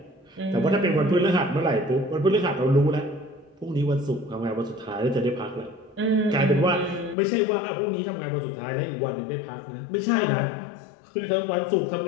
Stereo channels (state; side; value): drops out; right; at 7.2 s